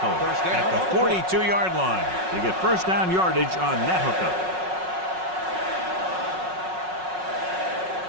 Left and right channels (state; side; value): late; left; 5.4 ms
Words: at the 42-yard line. They get first down yardage on that hookup.